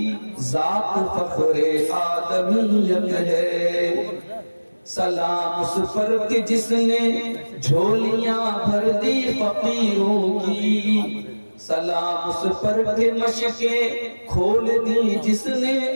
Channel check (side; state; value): both; inverted; correlation -1.00